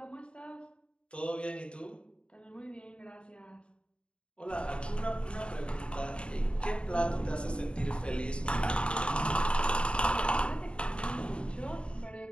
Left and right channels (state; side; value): late; right; 0.055 ms